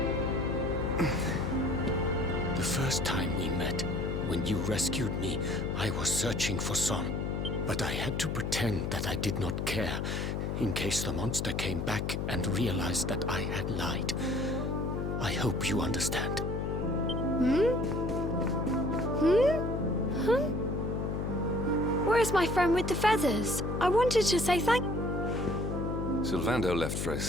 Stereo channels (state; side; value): noise; left; hum, 1 dB below the sound